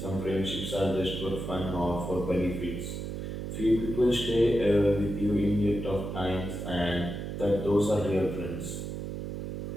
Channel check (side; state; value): right; noise; hum, 5 dB below the sound